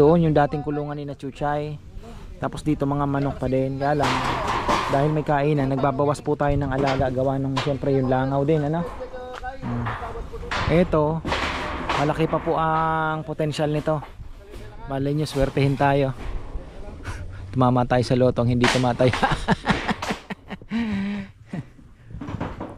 yung dating kulungan ni na Chuchay. Tapos dito mga manok pa din. Kaya lang dahil may kainan, nagbabawas po tayo ng alaga, gawa nung siyempre yung langaw din, ano. Ito malaki pa po ang potensyal nito. Malay nyo, swertehin tayo. Tumama tayo sa lotong, hindi tumatay.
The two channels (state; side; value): identical; both; correlation 1.00